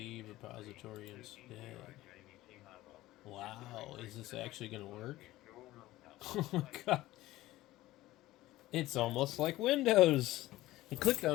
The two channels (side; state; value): right; quieter; 16.7 dB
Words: instead. Wow, is this actually going to work? Oh my god. It's almost like Windows. I clicked